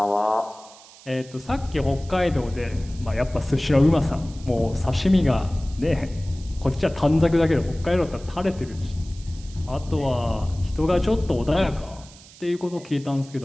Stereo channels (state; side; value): noise; right; hiss, 22 dB below the sound